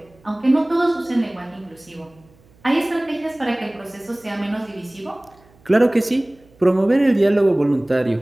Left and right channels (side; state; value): right; noise; hum, 30 dB below the sound